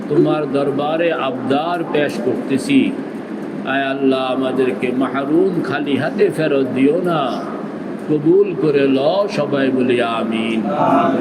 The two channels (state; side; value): identical; both; correlation 1.00